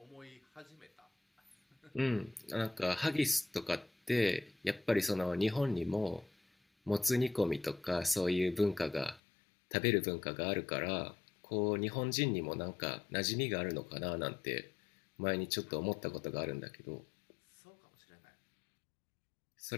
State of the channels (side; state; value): right; drops out; at 9.2 s